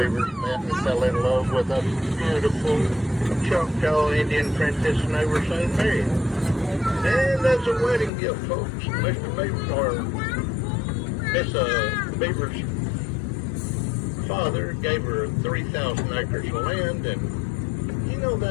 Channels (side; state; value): right; drops out; at 8.1 s